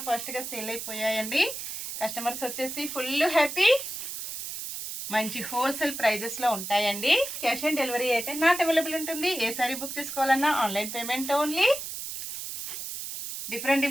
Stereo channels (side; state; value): right; noise; hiss, 7 dB below the sound